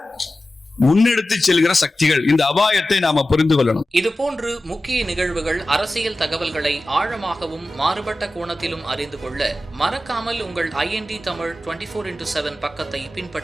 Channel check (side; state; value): both; normal; correlation 0.94